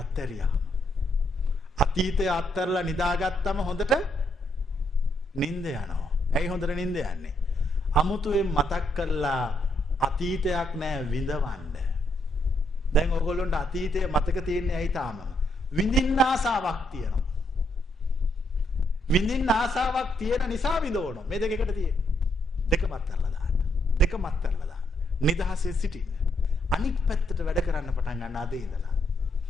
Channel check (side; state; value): both; normal; correlation 0.76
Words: අතීතය අත්හැරලා නිදාගත්තම හොඳට නිින්ද යනවා. ඇයි හොඳට නිින්ද යන්නේ? අමුතුවෙන් මතක් කරලා අතීතයක් නෑ විඳවන්න. දැන් ඔයගොල්ලන්ට අතීතය මතක තියෙන්නේ ඇයි තාම? විඳින්න ආසාවක් තියෙනවා. විඳින්න ආසාවක් තියෙන නිසා විඳවනවා. මේ දෙක එකට තියෙන්නේ. දෙකම අත්හැරලා දාන්න. දෙකම අත්හැරලා දාන්න. නිදහසේ සිටින්න. අනිත් පැත්තට වැඩ කරන්න පටන් ගන්න අද ඉඳලා.